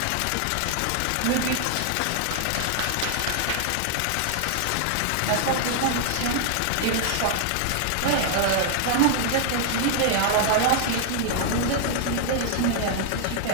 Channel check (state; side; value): different; both; correlation 0.00